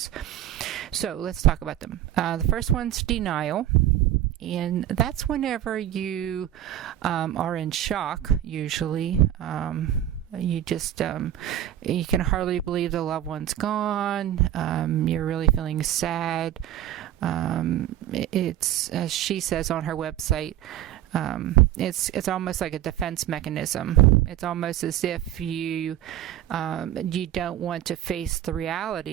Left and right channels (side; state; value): left; quieter; 12.2 dB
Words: So let's talk about them. The first one's denial, and that's whenever you are in shock, usually. You just, you can hardly believe the loved one's gone. You're really feeling sad. It's, as she says on her website, it's almost like a defense mechanism. It's almost as if you don't want to face the